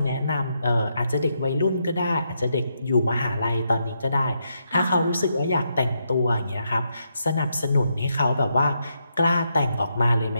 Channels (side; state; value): both; inverted; correlation -0.81